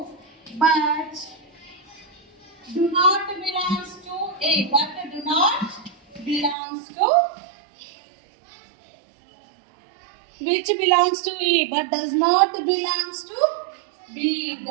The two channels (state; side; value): drops out; left; at 6.6 s